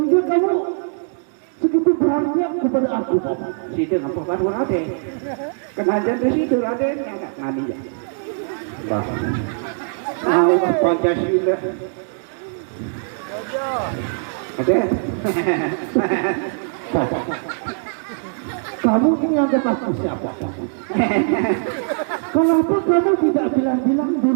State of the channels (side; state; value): left; silent; digital silence